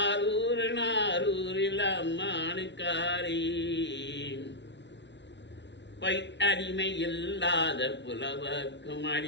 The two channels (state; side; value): late; right; 0.51 ms